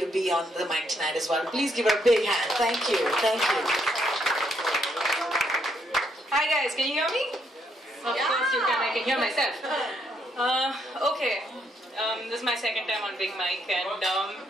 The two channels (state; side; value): normal; both; correlation 0.74